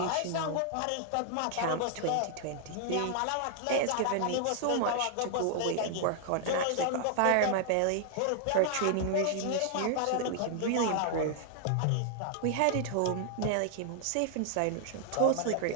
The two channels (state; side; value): different; both; correlation 0.00